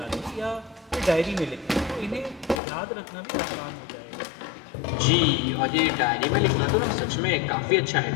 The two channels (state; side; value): drops out; right; at 2.6 s